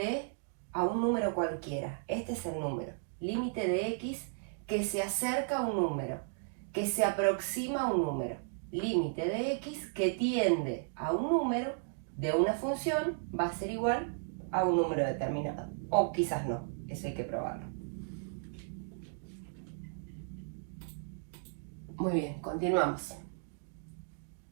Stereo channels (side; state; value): left; silent; digital silence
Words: a un número cualquiera. Este es el número. Límite de x que se acerca a un número, que se aproxima a un número. Límite de x que tiende a un número de una función va a ser igual a un número determinado. O quizás no, eso hay que probarlo. Muy bien, continuamos.